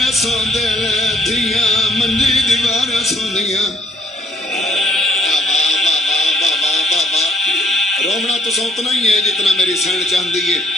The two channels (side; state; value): both; normal; correlation 0.65